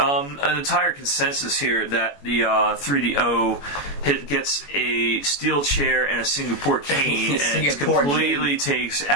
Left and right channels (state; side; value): late; right; 21 ms